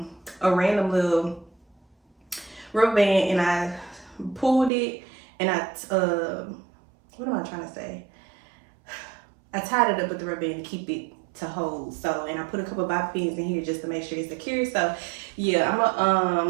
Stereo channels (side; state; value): left; drops out; at 4.7 s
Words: random little rubber band and I pulled it and I what am I trying to say? I tied it up with the rubber band to keep it to hold. So, and I put a couple of bobby pins in here just to make sure it's secure. So yeah, I'm